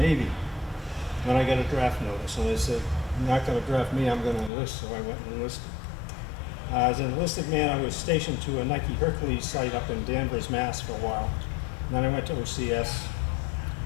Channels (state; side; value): drops out; right; at 4.5 s